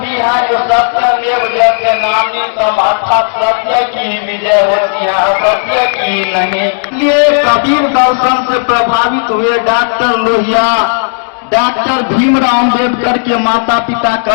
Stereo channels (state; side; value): silent; right; digital silence